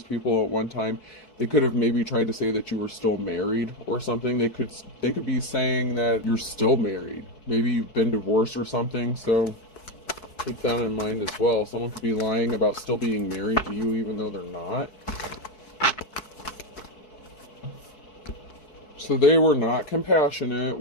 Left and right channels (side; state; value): right; late; 4.6 ms